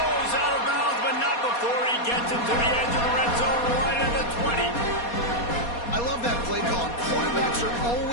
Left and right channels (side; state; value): right; late; 4.2 ms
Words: out of bounds, but not before he gets into the edge of the red zone right at the 20. I love that play call. Quarterbacks are